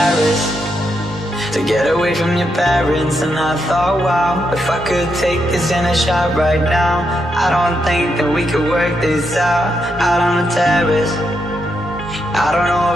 to get away from your parents, and I thought, wow, if I could take this in a shot right now, I don't think that we could work this out on the terrace. I don't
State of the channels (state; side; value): normal; both; correlation 0.81